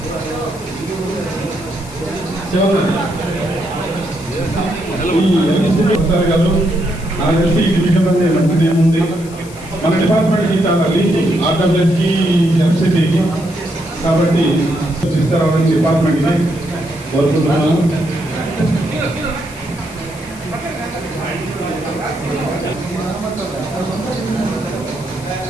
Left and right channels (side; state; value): left; noise; hiss, 19 dB below the sound